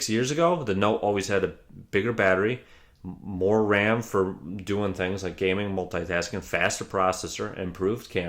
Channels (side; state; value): both; identical; correlation 1.00